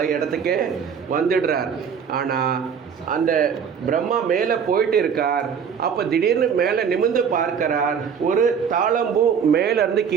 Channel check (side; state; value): left; quieter; 7.1 dB